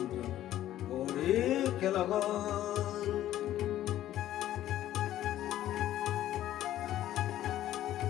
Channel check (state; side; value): quieter; right; 13.0 dB